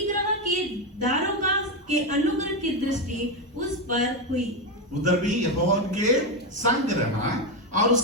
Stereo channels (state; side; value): normal; both; correlation 0.10